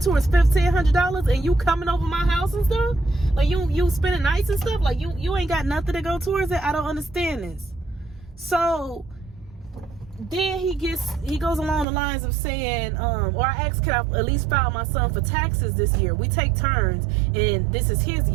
$1,500, and you coming over my house and stuff? Like, you spending nights and stuff? Like, you ain't got nothing to go towards it? I don't understand this. So then he goes along the lines of saying, or I asked, can I at least file my son for taxes this year? We take turns, and this is his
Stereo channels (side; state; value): left; drops out; at 11.9 s